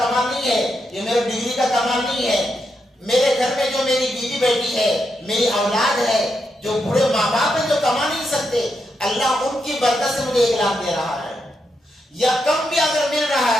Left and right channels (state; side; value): normal; both; correlation 0.83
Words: نہیں ہے، یہ میرے ڈگری کا کمال نہیں ہے، میرے گھر میں جو میری بیوی بیٹی ہے، میری اولاد ہے، جو بوڑھے ماں باپ ہیں جو کما نہیں سکتے، اللہ ان کی برکت سے مجھے 1 لاکھ دے رہا ہے، یا کم بھی اگر مل رہا